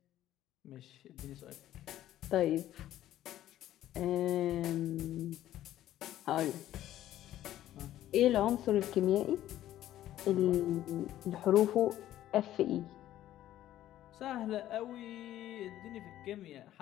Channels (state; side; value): quieter; right; 13.1 dB